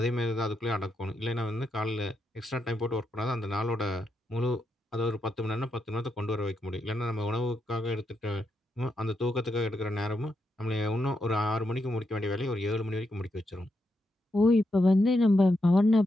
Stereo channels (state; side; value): normal; both; correlation 0.83